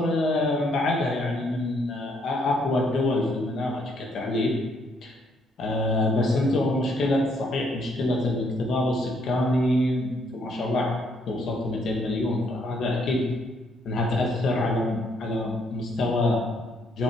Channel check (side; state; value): both; normal; correlation 0.71